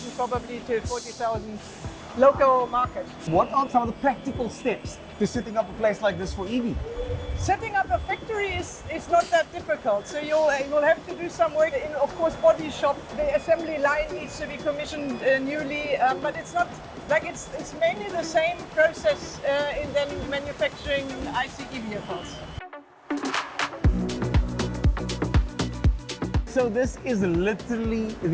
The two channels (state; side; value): identical; both; correlation 1.00